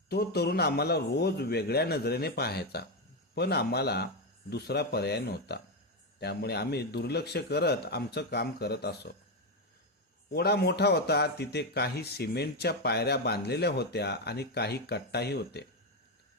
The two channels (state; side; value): normal; both; correlation 0.08